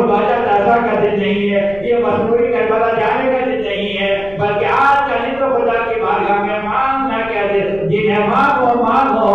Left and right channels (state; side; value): noise; left; rumble, 19 dB below the sound